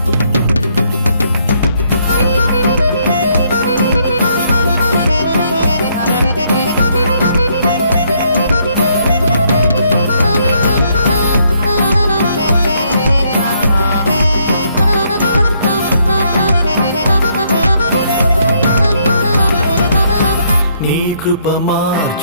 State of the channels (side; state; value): both; inverted; correlation -0.71